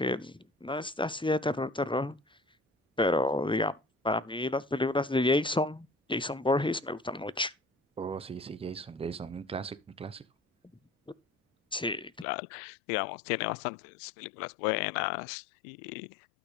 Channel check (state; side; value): drops out; right; at 12.2 s